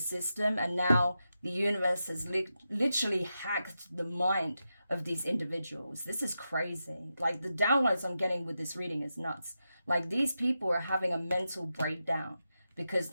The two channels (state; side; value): inverted; both; correlation -0.89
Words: and now the universe has literally hacked the mind of these individuals. This is crazy. Like, the downloads I'm getting with this reading is nuts. Like, these people are having a mental breakdown because